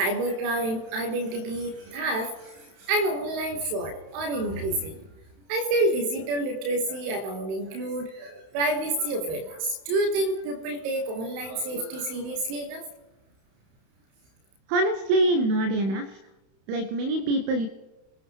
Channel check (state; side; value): late; left; 31 ms